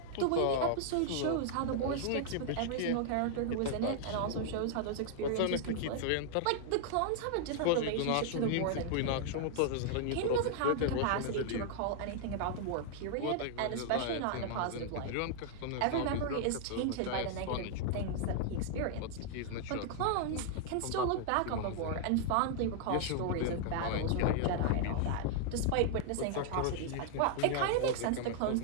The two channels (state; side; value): different; both; correlation -0.01